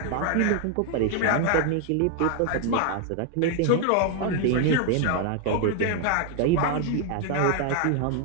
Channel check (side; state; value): both; different; correlation 0.00